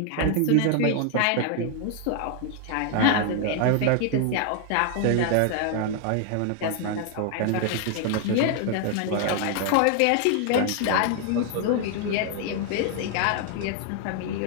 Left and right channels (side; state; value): both; different; correlation 0.00